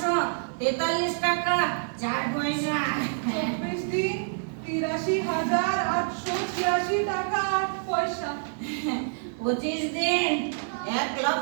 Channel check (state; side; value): silent; left; 60 dB below the other